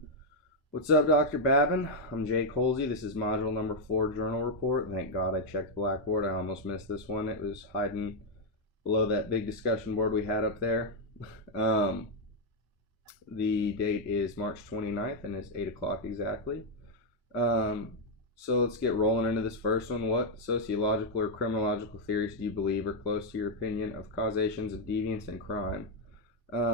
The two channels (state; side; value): normal; both; correlation 0.00